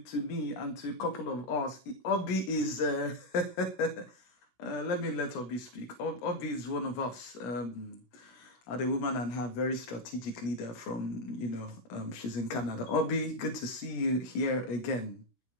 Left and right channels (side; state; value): right; late; 16 ms